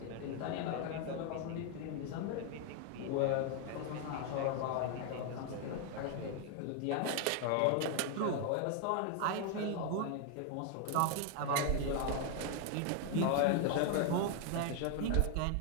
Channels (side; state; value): both; different; correlation 0.00